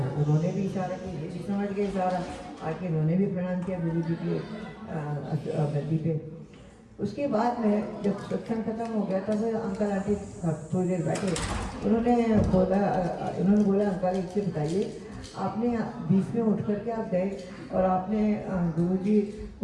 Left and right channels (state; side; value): identical; both; correlation 1.00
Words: उन्होंने भी इशारा किया, ये भी समझ गए इशारा, आके उन्होंने भी प्रणाम किया गुरु जी की गद्दी पे। उसके बाद में जब सत्संग खत्म हो गया तब अंकल आंटी थोड़ी देर बैठे, उन्होंने बोला अंकल एक चीज़ बताइए, आपने बीच में उठ करके आप गए और आपने गुरुजी